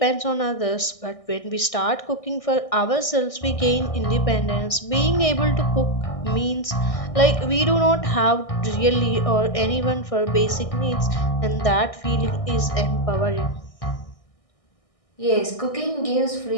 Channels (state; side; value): late; right; 1.6 ms